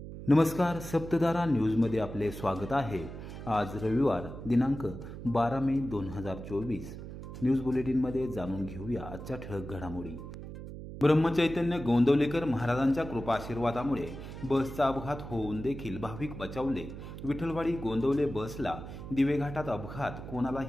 नमस्कार, सप्तधारा न्यूजमध्ये आपले स्वागत आहे। आज रविवार दिनांक 12 मे 2024 न्यूज बुलेटिनमध्ये जाणून घेऊया आजच्या ठळक घडामोडी। ब्रह्मचैतन्य गोंदवलेकर महाराजांच्या कृपा आशीर्वादामुळे बसचा अपघात होऊन देखील भाविक बचावले। विठ्ठलवाडी गोंदवले बसला दिवेघाटात अपघात,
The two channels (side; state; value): right; noise; hum, 10 dB below the sound